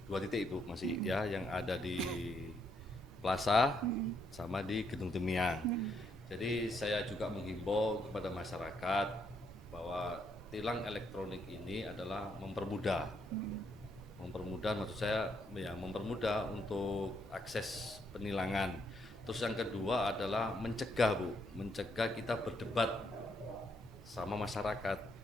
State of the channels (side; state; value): both; normal; correlation 0.74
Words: 2 titik Bu masih ya, yang ada di Plaza sama di Gedung Temyang. Jadi saya juga menghimbau kepada masyarakat bahwa tilang elektronik ini adalah mempermudah. Mempermudah maksud saya ya mempermudah untuk akses penilangan. Terus yang kedua adalah mencegah Bu, mencegah kita berdebat sama masyarakat.